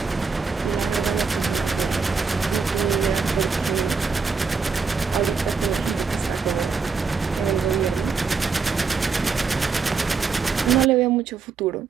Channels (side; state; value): left; quieter; 5.1 dB